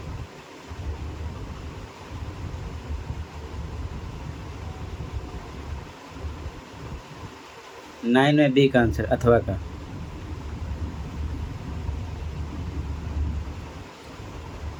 नाइन में बी का आंसर अथवा का,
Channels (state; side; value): identical; both; correlation 1.00